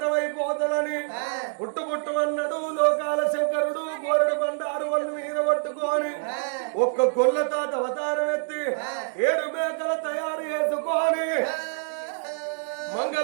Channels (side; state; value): left; silent; digital silence